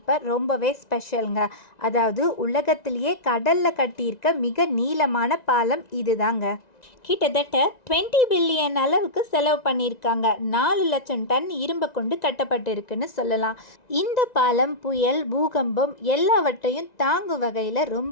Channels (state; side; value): late; right; 1.9 ms